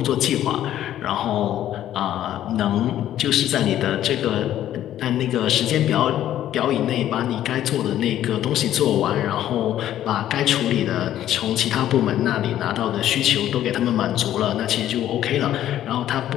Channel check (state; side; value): quieter; right; 12.0 dB